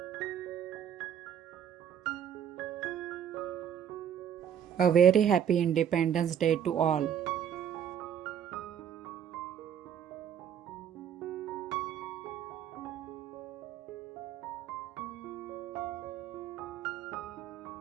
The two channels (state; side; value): quieter; left; 9.0 dB